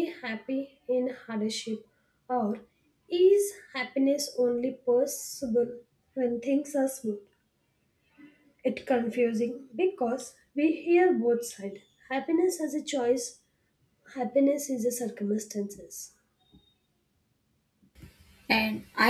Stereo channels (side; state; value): both; identical; correlation 1.00